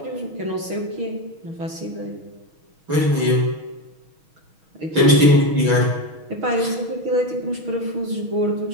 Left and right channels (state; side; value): late; left; 6.3 ms